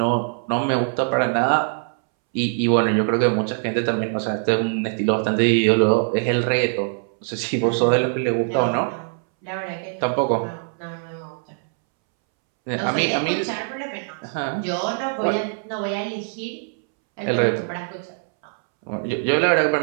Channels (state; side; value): silent; left; 64 dB below the other